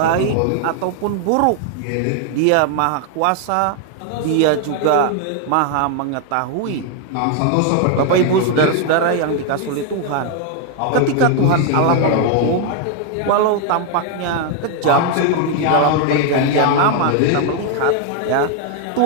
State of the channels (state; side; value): different; both; correlation 0.00